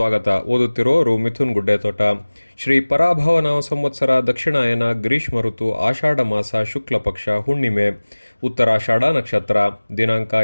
ಓದುತ್ತಿರೋರು ಮಿಥುನ್ ಗುಡ್ಡೆತೋಟ. ಶ್ರೀ ಪರಾಭವನಾಮ ಸಂವತ್ಸರ ದಕ್ಷಿಣಾಯನ ಗ್ರೀಷ್ಮ ಋತು ಆಷಾಢ ಮಾಸ ಶುಕ್ಲ ಪಕ್ಷ ಹುಣ್ಣಿಮೆ ಉತ್ತರಾಷಾಢ ನಕ್ಷತ್ರ ದಿನಾಂಕ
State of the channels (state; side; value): inverted; both; correlation -1.00